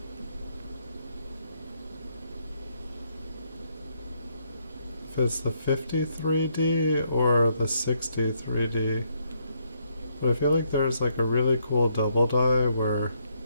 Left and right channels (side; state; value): both; inverted; correlation -0.74